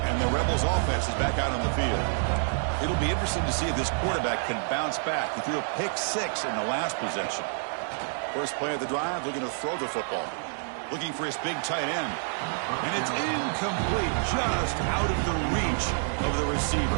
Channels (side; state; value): left; silent; digital silence